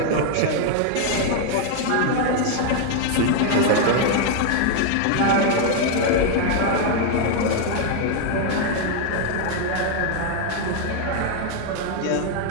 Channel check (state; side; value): different; both; correlation 0.00